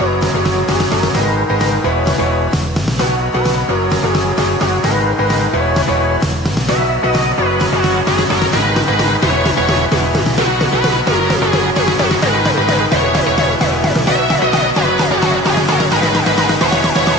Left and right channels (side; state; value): both; normal; correlation 0.52